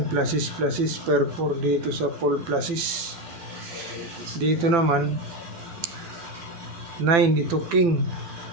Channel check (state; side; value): late; left; 12 ms